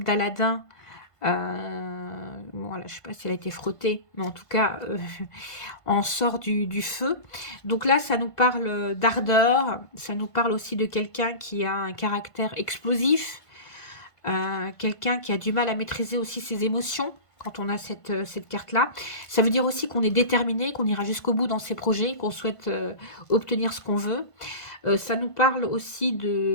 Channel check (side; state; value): right; late; 1.5 ms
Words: d'Aladin. Bon, voilà, je ne sais pas si elle a été frottée, mais en tout cas on sort du feu. Donc là ça nous parle d'ardeur, ça nous parle aussi de quelqu'un qui a un caractère explosif. Quelqu'un qui a du mal à maîtriser aussi ses émotions quand on a cette carte-là. Ça veut dire aussi qu'on est déterminé, qu'on ira jusqu'au bout dans ses projets, qu'on souhaite obtenir ce qu'on veut. Ça nous parle aussi